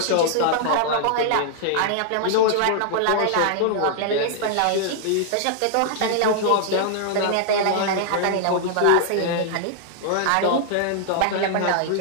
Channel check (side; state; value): both; different; correlation -0.01